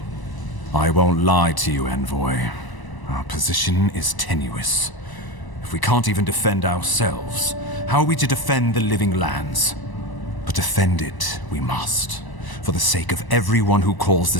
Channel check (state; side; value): late; right; 1.0 ms